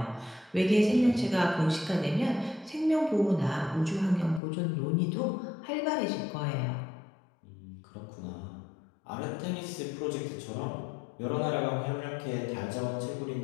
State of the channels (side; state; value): right; drops out; at 4.4 s